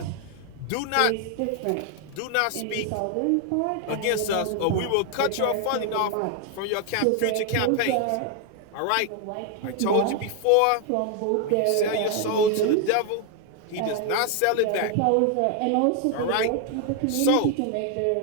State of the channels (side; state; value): both; different; correlation 0.00